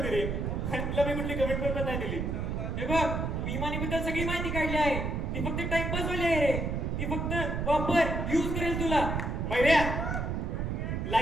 रे, आणि तुला मी कुठली कमिटमेंट पण नाही दिली. हे बघ, मी इमानीबद्दल सगळी माहिती काढली आहे. ती फक्त टाइमपास वाली आहे रे. ती फक्त वापर यूज करेल तुला. मैऱ्या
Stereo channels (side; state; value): right; noise; rumble, 1 dB below the sound